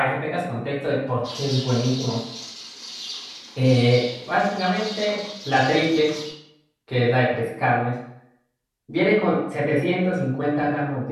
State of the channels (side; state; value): both; identical; correlation 1.00